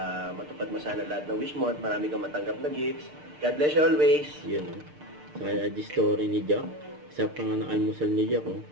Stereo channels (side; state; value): left; late; 6.7 ms